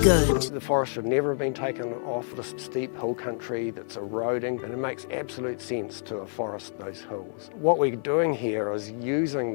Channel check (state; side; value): silent; right; digital silence